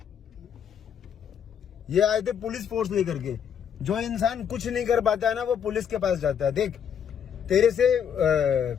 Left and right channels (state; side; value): quieter; right; 8.1 dB